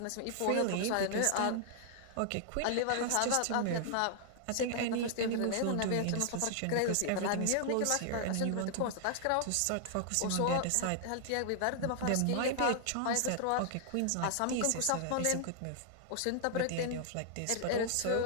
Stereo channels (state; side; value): different; both; correlation -0.01